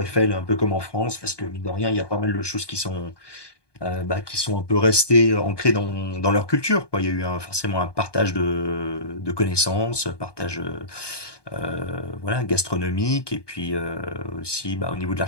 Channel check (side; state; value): right; late; 1.2 ms